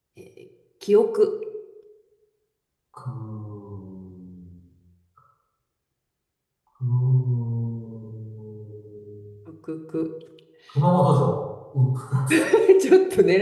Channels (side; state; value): both; identical; correlation 1.00